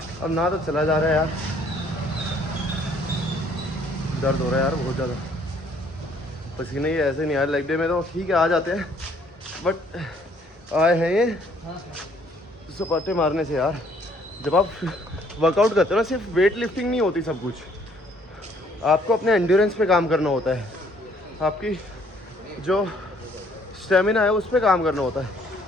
ना तो चला जा रहा है यार, दर्द हो रहा है यार बहुत ज़्यादा। पसीने ही ऐसे नहीं आए लेग डे में, तो ठीक है आ जाते हैं, बट आए हैं ये सपाटे मारने से यार। जब आप वर्कआउट करते हो ना, सिर्फ वेट लिफ्टिंग नहीं होती सब कुछ, आपको अपने एंड्योरेंस पे काम करना होता है, आपकी जो स्टेमिना है उस पे काम करना होता है।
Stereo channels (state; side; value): normal; both; correlation 0.63